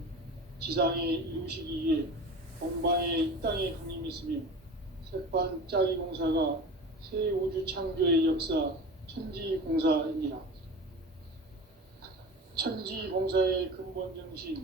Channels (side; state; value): both; normal; correlation 0.33